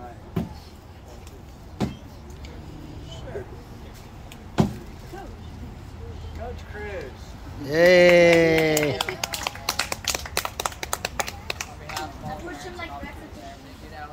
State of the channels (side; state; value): both; identical; correlation 1.00